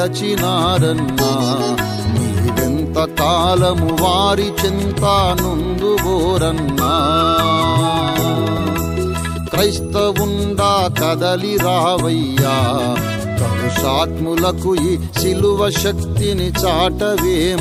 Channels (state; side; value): identical; both; correlation 1.00